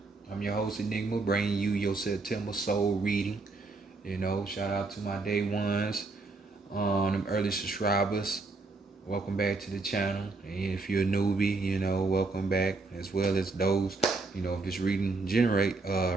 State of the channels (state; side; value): quieter; left; 3.7 dB